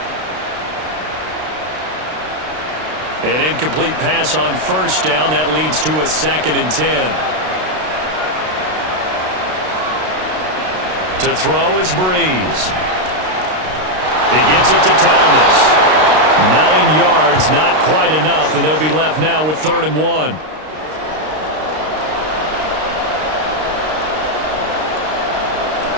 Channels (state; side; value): late; left; 32 ms